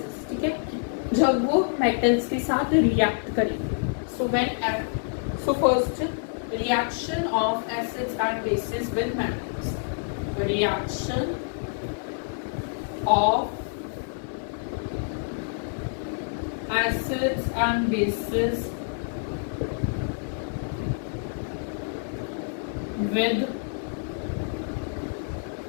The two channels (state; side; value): silent; right; 60 dB below the other